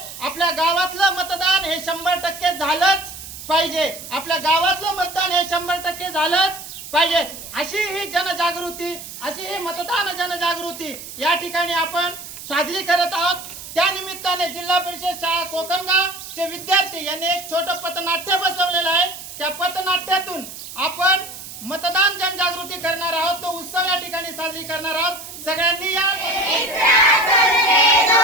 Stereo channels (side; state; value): right; noise; hiss, 12 dB below the sound